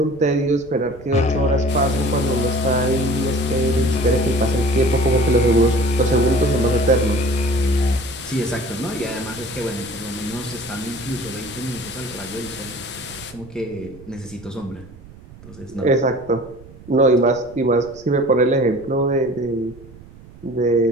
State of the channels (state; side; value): noise; right; rumble, 20 dB below the sound